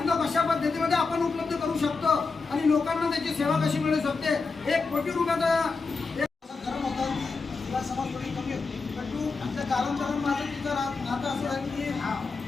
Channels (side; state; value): right; quieter; 4.3 dB